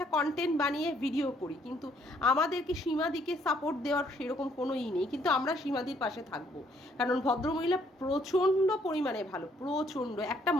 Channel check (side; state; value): both; normal; correlation 0.67